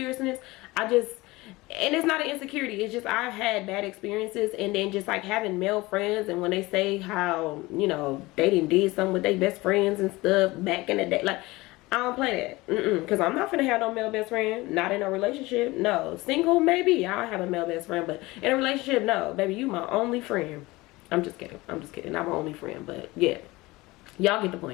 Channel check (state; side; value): quieter; right; 21.0 dB